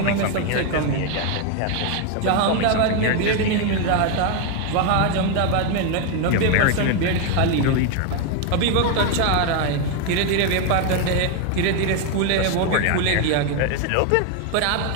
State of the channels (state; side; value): different; both; correlation 0.01